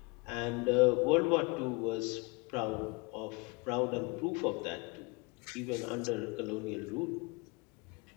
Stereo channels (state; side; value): quieter; right; 28.1 dB